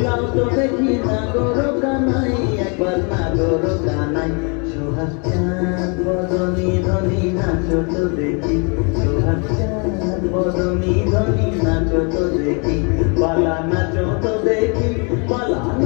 তো দেখি নাগর কানাই, একবার নাগর কানাই। সোহাগ বদনী ধনী নাচো তো দেখি, সোহাগ বদনী ধনী নাচো তো দেখি, পালা নাচো তো দেখি, পালা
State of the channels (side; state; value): right; quieter; 35.1 dB